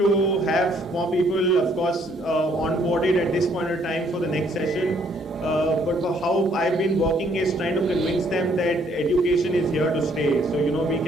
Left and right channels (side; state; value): both; normal; correlation 0.66